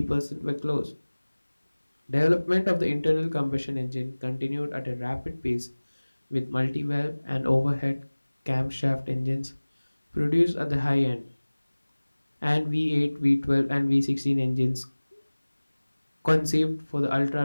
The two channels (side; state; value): both; inverted; correlation -1.00